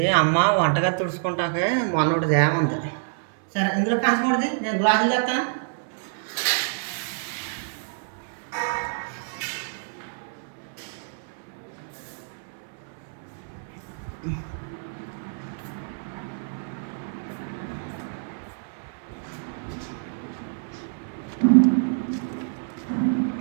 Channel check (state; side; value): silent; left; 60 dB below the other